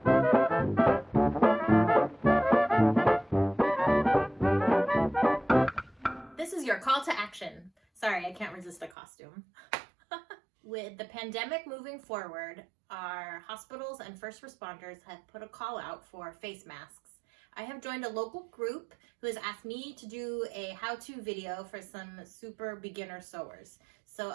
This is your call to action. Sorry, I can't resist a costume. With the pandemic moving forward, our hospitals and first responders have put a call out for face masks. I have joined a local group who has asked me to do a how-to video for some super beginner sewers. So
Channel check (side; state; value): left; drops out; at 9.0 s